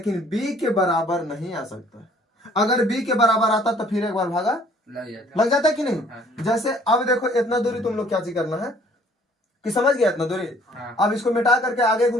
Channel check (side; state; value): both; normal; correlation 0.58